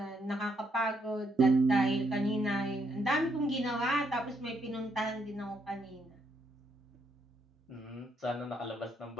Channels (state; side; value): normal; both; correlation 0.75